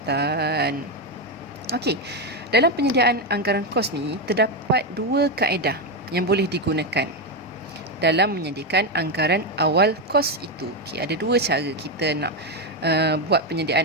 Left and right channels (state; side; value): normal; both; correlation 0.08